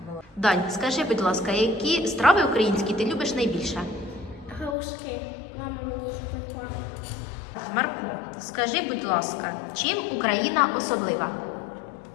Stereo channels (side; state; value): right; drops out; at 4.8 s